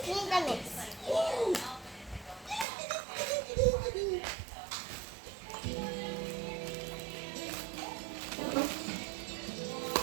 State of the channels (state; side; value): drops out; left; at 2.7 s